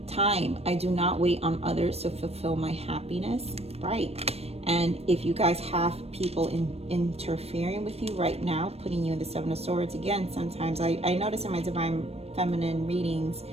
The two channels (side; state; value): left; late; 0.29 ms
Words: Time. I do not wait on others to fulfill my happiness. Right. And if you guys have people interfering with you right now, putting you in the 7 of Swords, again, sometimes I notice in my divine feminine readings,